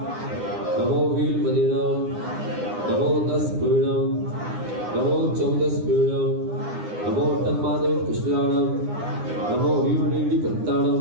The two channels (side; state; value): left; late; 9.8 ms